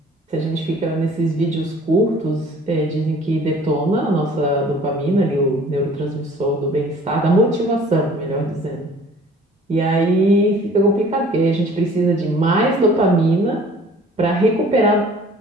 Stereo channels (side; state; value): both; normal; correlation 0.51